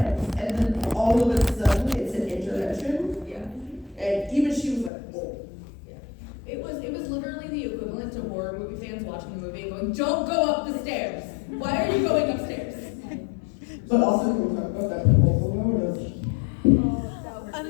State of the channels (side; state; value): right; drops out; at 4.9 s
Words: and then all of a sudden it's an intervention. Yeah. And even she was like, whoa. Yeah. It was literally the equivalent to horror movie fans watching the movie and going, "Don't go up the stairs. Why are you going upstairs?" But also, can we talk about that proposal notice?